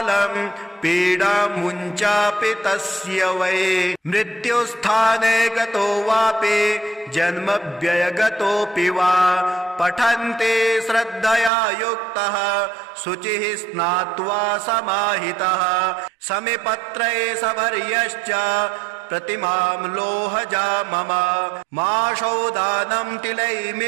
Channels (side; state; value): left; drops out; at 11.5 s